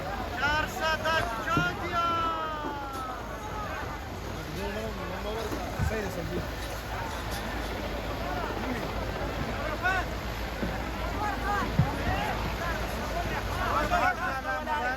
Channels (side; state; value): both; identical; correlation 1.00